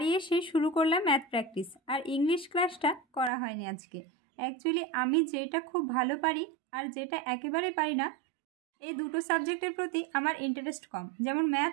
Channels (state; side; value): drops out; left; at 3.3 s